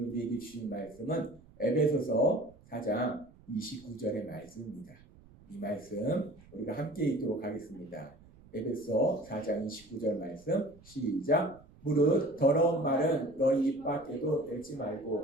우리에게 주신 말씀은 에베소서 4장 29절의 말씀입니다. 이 말씀 우리가 함께 읽도록 하겠습니다. 에베소 4장 29절 말씀 시작. 무릇 더러운 말은 너희 입 밖에도 내지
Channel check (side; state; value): right; noise; rumble, 24 dB below the sound